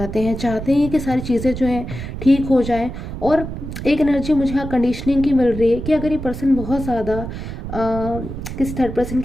हैं कि सारी चीज़ें जो हैं ठीक हो जाएं। और एक एनर्जी मुझे यहाँ कंडीशनिंग की मिल रही है कि अगर ये पर्सन बहुत ज़्यादा किसी थर्ड पर्सन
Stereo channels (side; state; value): right; noise; rumble, 8 dB below the sound